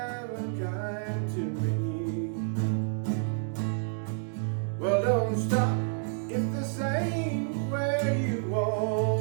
kind to me. Well, don't stop if this ain't where you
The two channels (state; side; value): silent; left; digital silence